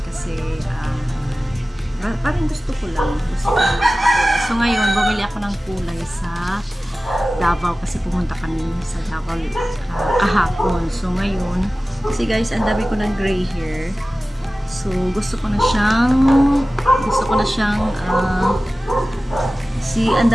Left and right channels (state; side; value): normal; both; correlation 0.97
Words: kasi parang gusto ko lang magkulay. So ngayon, bumili ako ng kulay sa Davao kasi pumunta kami sa Davao kahapon. So ngayon, kasi guys, ang dami ko ng gray hair. So gusto ko na siyang ang